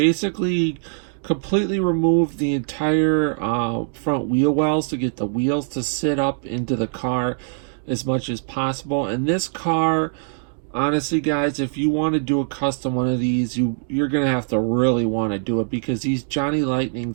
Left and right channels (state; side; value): silent; left; digital silence